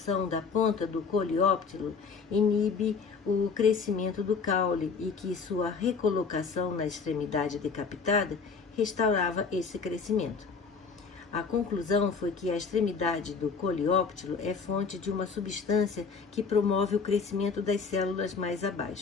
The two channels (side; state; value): right; quieter; 5.1 dB